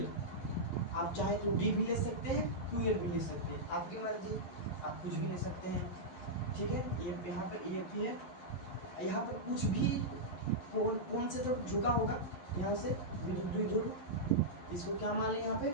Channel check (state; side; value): late; right; 11 ms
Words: आप चाहे तो d भी ले सकते हैं, 2l भी ले सकते हैं, आपकी मर्जी, आप कुछ भी ले सकते हैं। ठीक है, ये यहाँ पर ए पी है, यहाँ पर कुछ भी कौन से तो झुका होगा, यहाँ से विद्युत द्विध्रुव, इसको क्या मान लें यहाँ पे